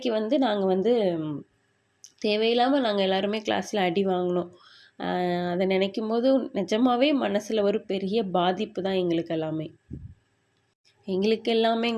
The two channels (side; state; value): both; identical; correlation 1.00